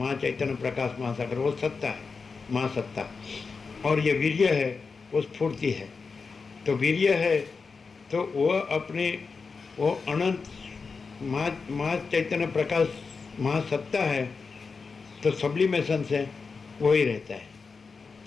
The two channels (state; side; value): quieter; right; 4.8 dB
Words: प्रकाश महासागर, वो सत्ता है, महासत्ता. और ये वीर्य है, वो स्फूर्ति है. तो वीर्य है तो वो अपने वो अनंत महाचैतन्य प्रकाश महासत्ता है, तो सब्लिमेशन से वो ही रहता है.